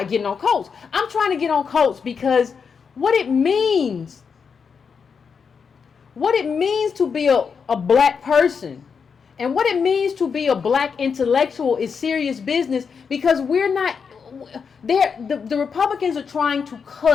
on Coates. I'm trying to get on Coates because what it means to be a black person and what it means to be a black intellectual is serious business, because we're not there. The Republicans are trying to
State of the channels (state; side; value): quieter; right; 6.0 dB